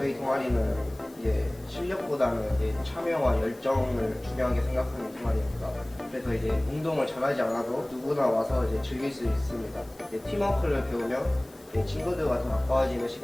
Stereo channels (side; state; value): left; noise; hiss, 26 dB below the sound